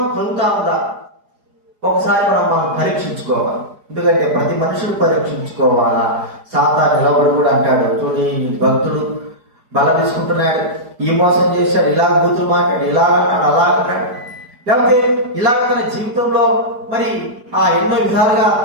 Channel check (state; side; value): late; left; 4.8 ms